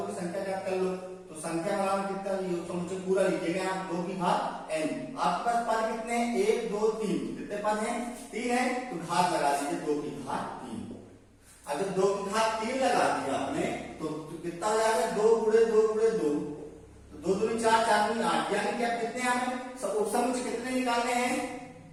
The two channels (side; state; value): both; identical; correlation 1.00